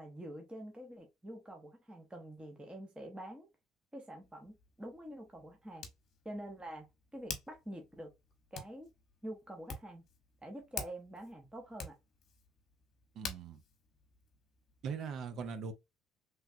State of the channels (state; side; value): normal; both; correlation 0.70